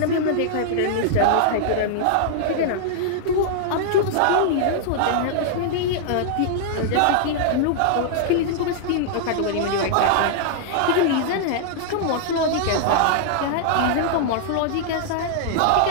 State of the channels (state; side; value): different; both; correlation -0.01